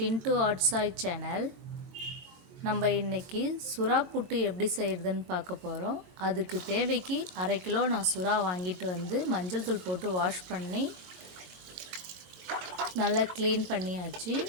Aatchai channel. நம்ம இன்றைக்கி சுறா புட்டு எப்படி செய்கிறதுன்னு பார்க்க போகிறோம். அதுக்கு தேவைக்கு 1/2 கிலோ நான் சுறா வாங்கிட்டு வந்து மஞ்சள் தூள் போட்டு வாஷ் பண்ணி நல்லா க்ளீன் பண்ணியாச்சு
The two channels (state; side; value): late; left; 22 ms